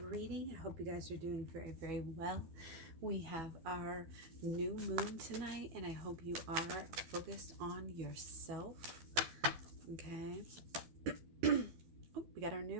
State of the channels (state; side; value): late; left; 12 ms